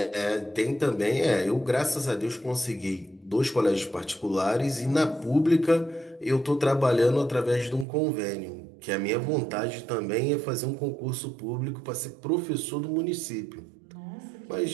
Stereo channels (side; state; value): left; drops out; at 7.9 s